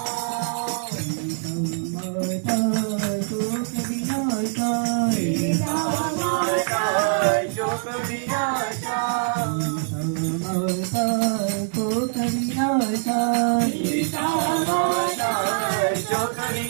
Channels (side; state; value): left; silent; digital silence